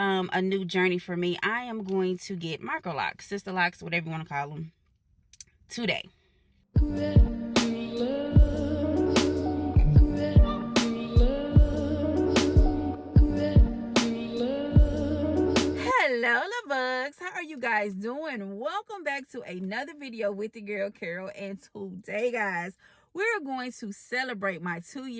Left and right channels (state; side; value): identical; both; correlation 1.00